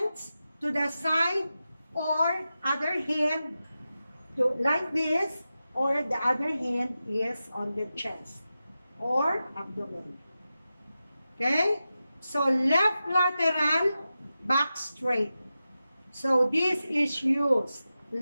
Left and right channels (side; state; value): both; inverted; correlation -0.92